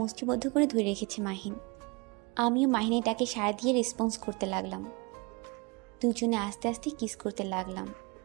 মুষ্টিবদ্ধ করে ধরে রেখেছে মাহিন। আমিও মাহিনের ডাকে সাড়া দিয়ে রেসপন্স করতে লাগলাম। দুজনে আস্তে আস্তে কিস করতে লাগলাম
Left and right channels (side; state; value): left; quieter; 28.0 dB